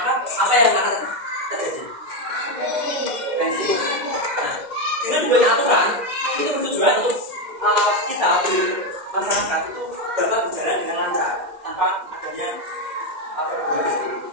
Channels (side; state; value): left; late; 2.1 ms